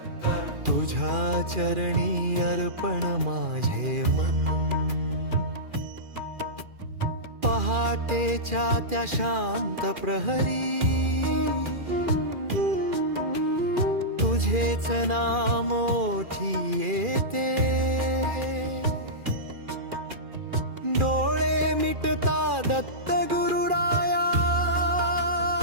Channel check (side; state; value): left; late; 2.4 ms